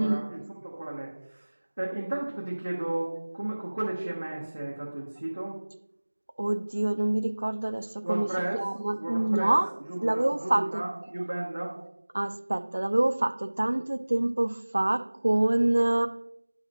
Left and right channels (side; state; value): both; inverted; correlation -1.00